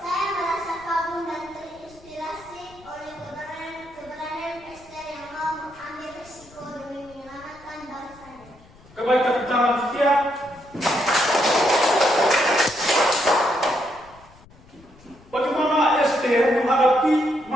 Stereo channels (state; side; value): noise; left; rumble, 25 dB below the sound